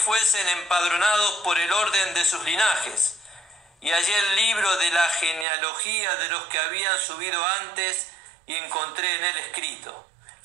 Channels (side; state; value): left; drops out; at 5.5 s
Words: empadronados por el orden de sus linajes. Y hallé el libro de la genealogía de los que habían subido antes y encontré en él escrito.